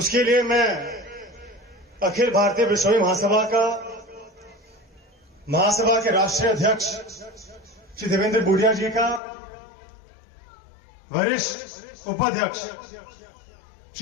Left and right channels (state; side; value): drops out; right; at 9.2 s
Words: लिए मैं अखिल भारतीय बिश्नोई महासभा के राष्ट्रीय अध्यक्ष श्री देवेंद्र बूढ़िया जी का, वरिष्ठ उपाध्यक्ष